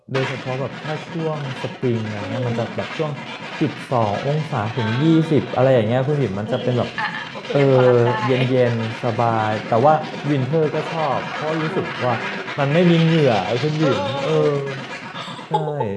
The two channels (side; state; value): both; identical; correlation 1.00